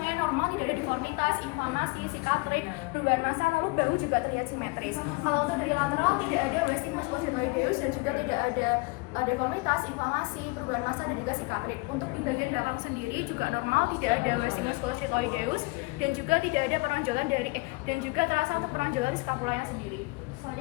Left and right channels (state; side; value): quieter; right; 26.0 dB